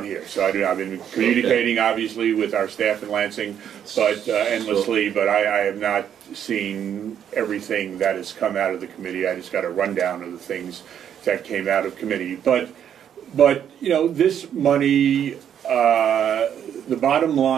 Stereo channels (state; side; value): quieter; left; 9.2 dB